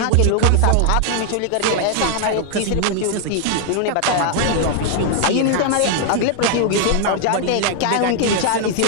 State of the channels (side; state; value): both; different; correlation 0.00